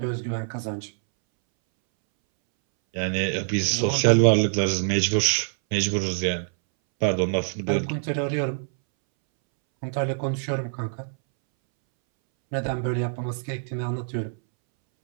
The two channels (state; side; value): silent; left; 62 dB below the other